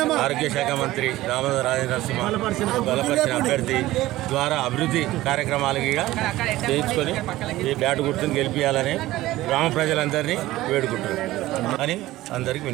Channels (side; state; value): left; quieter; 16.7 dB